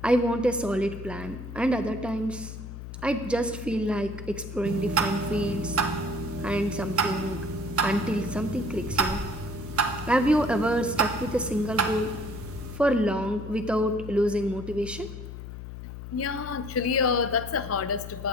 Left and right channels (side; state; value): left; noise; hum, 10 dB below the sound